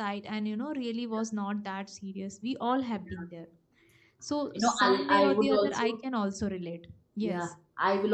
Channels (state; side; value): identical; both; correlation 1.00